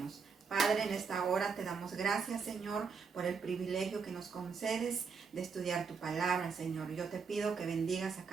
Padre, en esta hora te damos gracias, Señor, por el privilegio que nos concedes de estudiar tu palabra, Señor. Yo te pido que bendigas a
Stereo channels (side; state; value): left; quieter; 5.6 dB